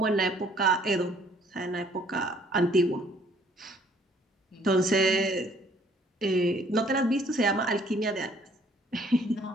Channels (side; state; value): both; normal; correlation 0.61